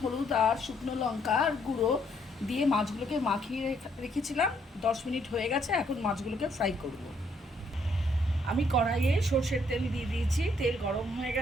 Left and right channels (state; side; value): normal; both; correlation 0.70